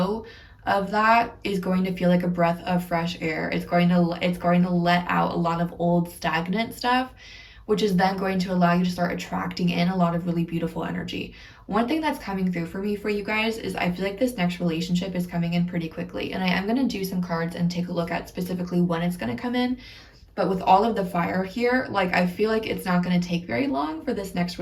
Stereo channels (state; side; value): identical; both; correlation 1.00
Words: of that is going to feel like a breath of fresh air. It's going to let out a lot of old stagnant stuff, which is then going to allow you to start attracting in a lot of really beautiful energy. One thing that's coming through for me for you guys is I feel like this next relationship is coming in pretty quickly. And I am going to do some cards and take a look at specifically when it's going to come in. But with all of the fire here, like, I feel like it's not going to take very long for this next